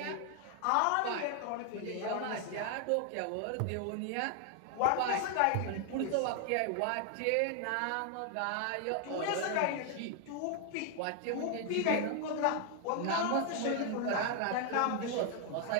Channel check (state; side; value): different; both; correlation 0.00